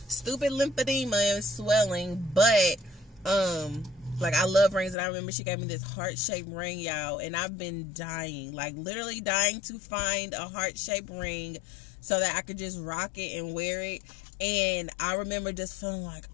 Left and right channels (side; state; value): right; drops out; at 5.0 s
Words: stupid lymphedema and swelling. But like, I love rings, and I remember she gave me this heart-shaped ring, y'all, and I've been dying, like literally dying to find a heart-shaped ring so that I could just rock it and wear it. And I remember just feeling like,